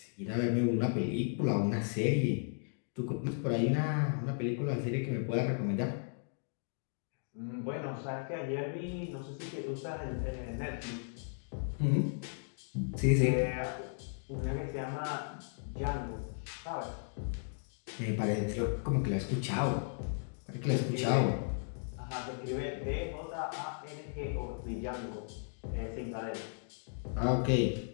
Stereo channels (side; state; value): right; silent; digital silence